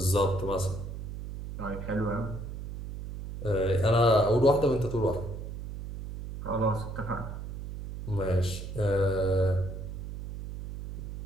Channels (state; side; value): noise; right; hum, 8 dB below the sound